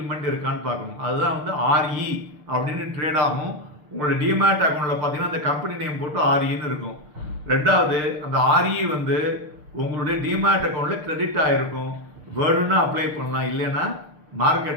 இருக்கான்னு பார்க்கணும். அதுதான் ஆர்இ அப்படின்னு ட்ரேட் ஆகும். உங்களோட டிமேட் அக்கௌண்ட்டில் பார்த்தீங்கன்னா அந்த கம்பெனி நேம் போட்டு ஆர்இன்னு இருக்கும். ரெண்டாவது, அந்த ஆர்இ உங்களுடைய டிமேட் அக்கௌண்ட்டில் கிரெடிட் ஆகிருக்கும். வேணும்னா அப்ளை பண்ணலாம், இல்லைன்னா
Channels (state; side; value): late; left; 6.7 ms